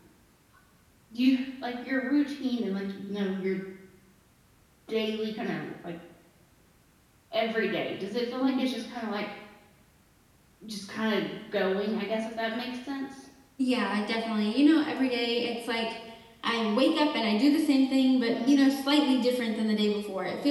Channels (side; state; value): both; identical; correlation 1.00